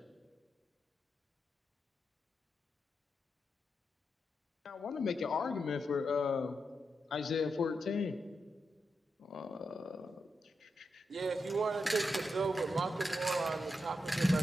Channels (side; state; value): both; normal; correlation 0.86